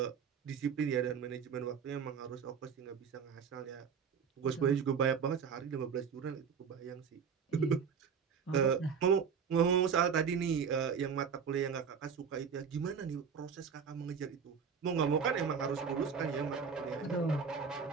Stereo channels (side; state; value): left; quieter; 6.5 dB